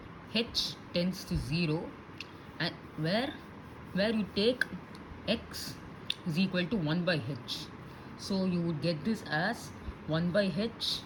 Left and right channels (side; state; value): both; identical; correlation 1.00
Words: h tends to 0 and where you take x is equal to 1 by h. So you would get this as 1 by h